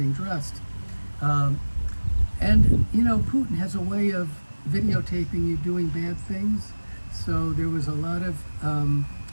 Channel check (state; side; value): inverted; both; correlation -1.00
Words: dressed. And, you know, Putin has a way of videotaping you doing bad things. So there was a lot of